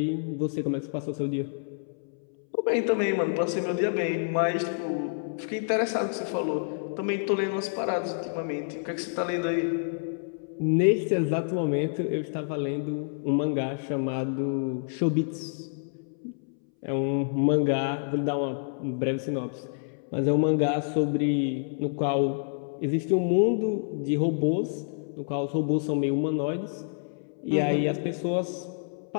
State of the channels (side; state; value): right; silent; 59 dB below the other